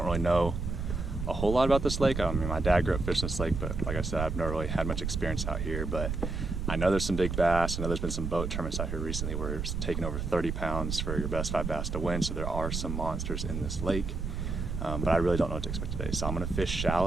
really know a whole lot about this lake. I mean, my dad grew up fishing this lake, but like I said, I've never really had much experience out here, but I know there's some big bass. I know there's been some boat tournaments out here recently where it's taking over 30 pounds for your best 5 bass to win, so there are some monsters in this lake. But I really don't know what to expect today, so I'm gonna fish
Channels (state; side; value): noise; right; rumble, 3 dB below the sound